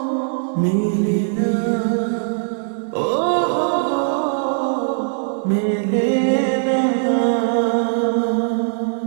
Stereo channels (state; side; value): silent; left; digital silence